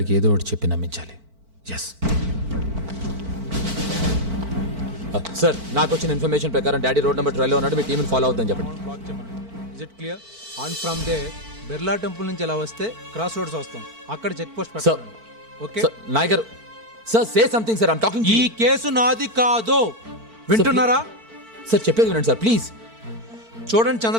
ఏదో ఒకటి చెప్పి నమ్మించాలి. ఎస్ సార్, నాకు వచ్చిన ఇన్ఫర్మేషన్ ప్రకారం డాడీ రోడ్ నెంబర్ 12లో ఉన్నాడు. మీ టీంని ఫాలో అవుతుందని చెప్పండి. Is it clear? On from there Birla temple నుంచి ఎలా వస్తే క్రాస్ రోడ్స్ వస్తాం, అక్కడ చెక్ పోస్ట్ సార్ పెట్టండి. ఓకే. సార్, నాయక్ గారు sir, say something sir. I'm talking. ఈ కేసు నాది కాదు, వింటున్నారా? సార్ చెప్పేది వినండి సార్ ప్లీజ్. చూడండి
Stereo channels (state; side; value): late; left; 4.5 ms